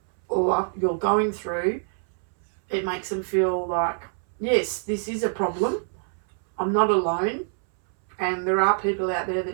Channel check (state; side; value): silent; left; 61 dB below the other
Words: or you're going through, it makes them feel like, yes, this is a problem. I'm not alone. And there are people out there